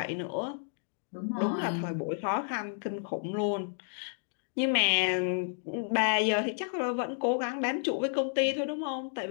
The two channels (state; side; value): silent; right; digital silence